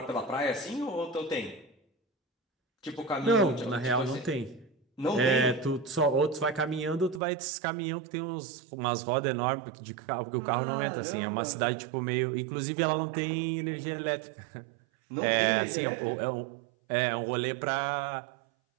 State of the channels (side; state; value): left; drops out; at 7.2 s